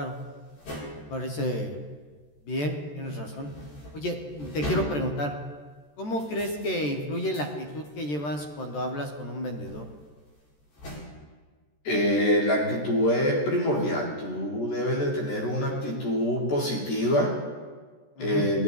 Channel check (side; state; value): right; late; 14 ms